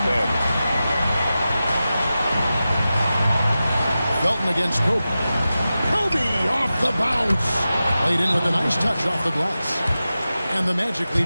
Felton against Kobe. Kobe off the bounce. Played in with a nice touch off the glass. And the Magic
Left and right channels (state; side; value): inverted; both; correlation -0.93